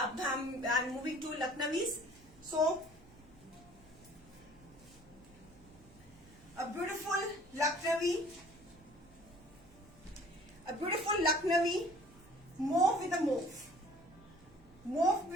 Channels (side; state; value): right; noise; hum, 26 dB below the sound